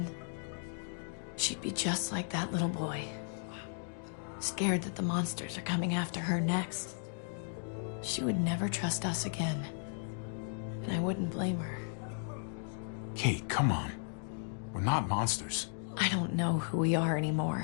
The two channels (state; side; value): silent; right; digital silence